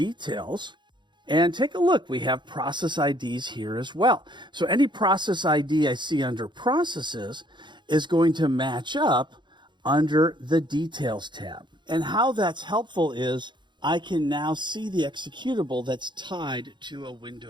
And take a look, we have process IDs here as well. So any process ID I see under Processes is going to match up under the Details tab. And how that's helpful is I can now see the executable that's tied to a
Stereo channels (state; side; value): late; left; 0.22 ms